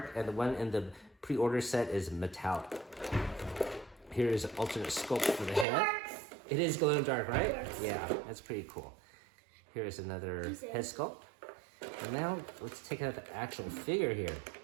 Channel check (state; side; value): drops out; left; at 5.7 s